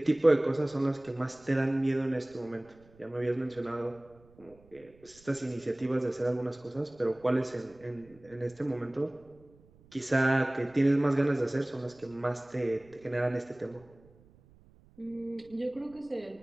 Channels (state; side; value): noise; right; rumble, 27 dB below the sound